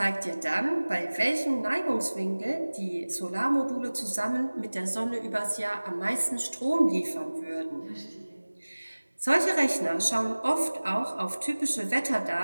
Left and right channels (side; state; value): both; inverted; correlation -1.00